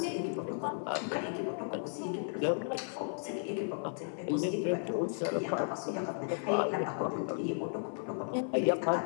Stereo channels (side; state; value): right; silent; 55 dB below the other